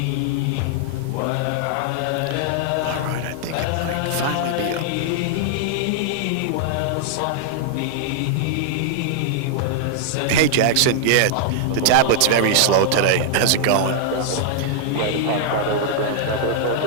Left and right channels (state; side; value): different; both; correlation -0.01